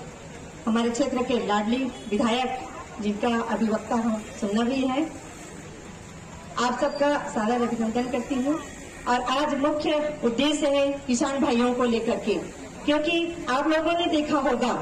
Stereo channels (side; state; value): both; identical; correlation 1.00